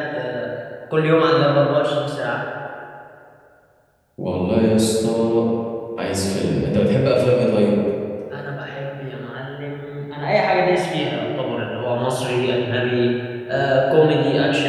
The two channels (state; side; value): identical; both; correlation 1.00